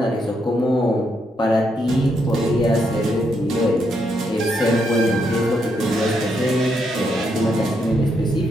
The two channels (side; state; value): both; normal; correlation 0.78